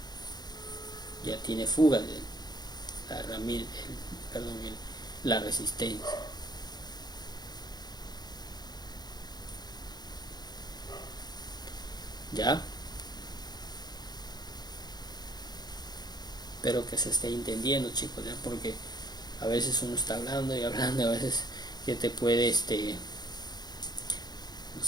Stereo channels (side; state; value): right; late; 0.20 ms